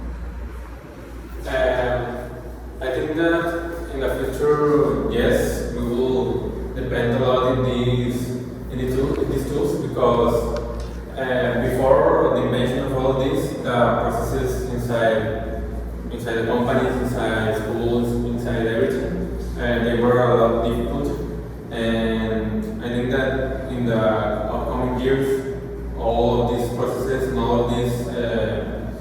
I think that in the future, yes, we will depend a lot in these tools because before the invention of all of these, the processes inside the companies, inside schools, inside everything, they were a lot difficult. And I think that in the upcoming years, all of these processes and all of these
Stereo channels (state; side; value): identical; both; correlation 1.00